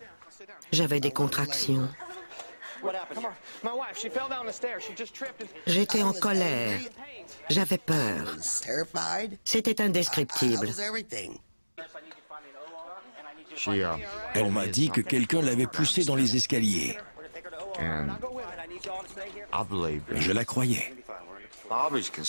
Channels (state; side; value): inverted; both; correlation -1.00